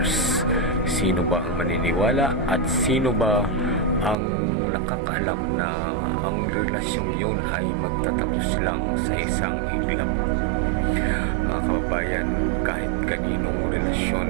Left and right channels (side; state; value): left; drops out; at 4.2 s